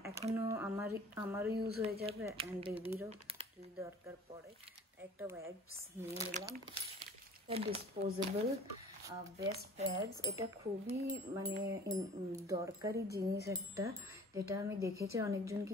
এখনও আমারও ইউজ হয়ে যাবে অ্যান্ড বেবিরও যদি দরকার পড়ে, একটা ওয়াইপস নিয়ে নিলাম। ডিসপোজেবল বেস্ট প্যাডস, এটা খুবই মানে দরকারি জিনিস একটা, যেটা আমি দেখেছি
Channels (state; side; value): normal; both; correlation 0.47